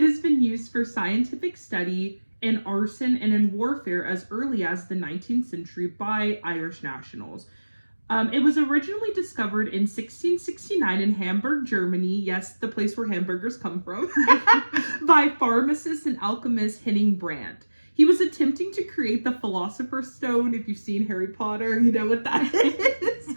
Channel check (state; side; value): inverted; both; correlation -1.00